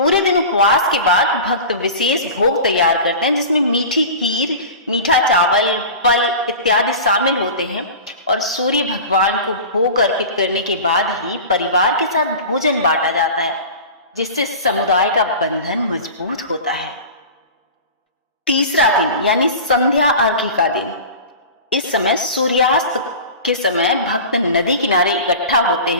दिन उपवास के बाद भक्त विशेष भोग तैयार करते हैं, जिसमें मीठी खीर, मीठा चावल, फल इत्यादि शामिल होते हैं और सूर्य भगवान को भोग अर्पित करने के बाद ही परिवार के साथ भोजन बांटा जाता है, जिससे समुदाय का बंधन मजबूत होता है। तीसरा दिन यानी संध्या अर्घ्य का दिन, इस समय सूर्यास्त के समय भक्त नदी किनारे इकट्ठा होते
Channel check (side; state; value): both; inverted; correlation -0.34